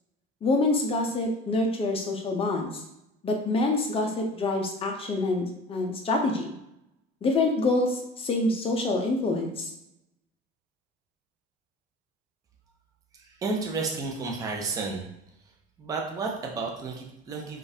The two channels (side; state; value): both; normal; correlation 0.41